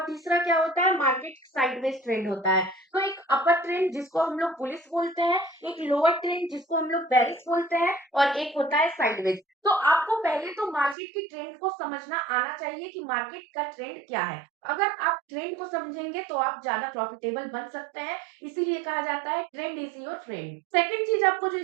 तीसरा क्या होता है, मार्केट साइडवेज ट्रेंड होता है। तो एक अपर ट्रेंड जिसको हम लोग बुलिश बोलते हैं, एक लोअर ट्रेंड जिसको हम लोग बेरिश बोलते हैं, और एक होता है साइडवेज। तो आपको पहले तो मार्केट की ट्रेंड को समझना आना चाहिए कि मार्केट का ट्रेंड क्या है। अगर आप ट्रेंड को समझेंगे तो आप ज्यादा प्रॉफिटेबल बन सकते हैं, इसीलिए कहा जाता है trend is your trend. Second चीज आपको जो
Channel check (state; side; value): drops out; left; at 11.0 s